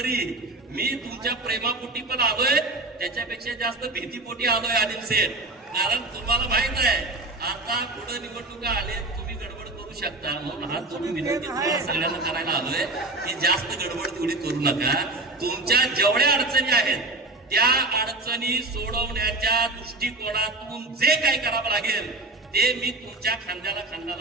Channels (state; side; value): quieter; left; 3.0 dB